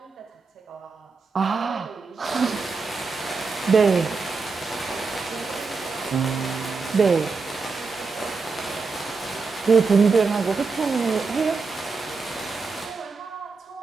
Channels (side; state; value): left; quieter; 4.5 dB